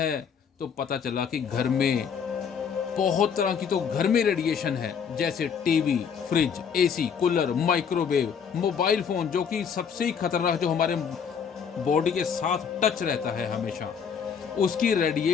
तो पता चला कि घर में बहुत तरह की तो घर में रेडिएशन है, जैसे TV, fridge, AC, cooler, microwave, mobile phone, जो कि सबसे ही खतरनाक, जो हमारे बॉडी के साथ टच रहता है हमेशा, उसकी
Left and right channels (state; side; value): quieter; right; 6.9 dB